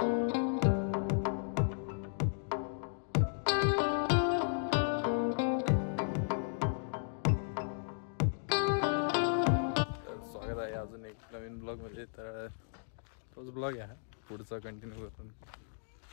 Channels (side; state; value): right; silent; digital silence